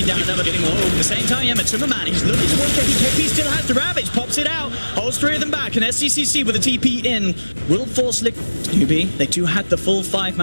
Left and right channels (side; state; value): both; inverted; correlation -1.00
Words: down another, getting more. At the same time, yeah, MrWood, he's looking towards KP. KP still has the Ravage, pops it out, holds three of them back, and SCCC with a TP in will force NewBee. They do have the full